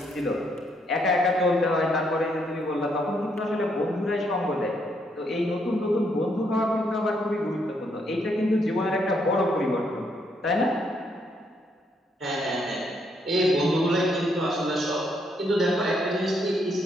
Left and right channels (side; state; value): both; normal; correlation 0.74